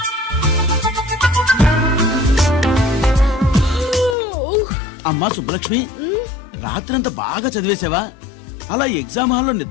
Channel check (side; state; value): right; drops out; at 4.2 s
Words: అమ్మా సుబ్బలక్ష్మి, రాత్రంతా బాగా చదివేశావా? అలా ఎగ్జామ్ హాల్లో